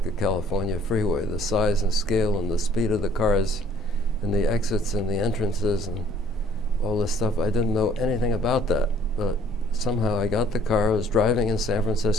a California freeway. The size and scale and the speed of the cars and the exits and the entrances and all this stuff, I didn't know anything about that. But somehow I got the car, I was driving in San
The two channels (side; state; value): both; normal; correlation 0.58